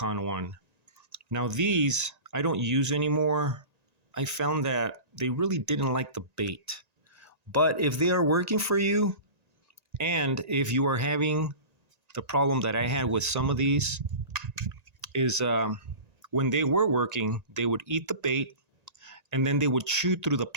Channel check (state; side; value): late; left; 1.9 ms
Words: one. Now these I don't use anymore. I found that they really didn't like the bait. But if they are working for you, and if you are having the problem that I had with some of these, is when they were working, they would eat the bait and then they would chew through the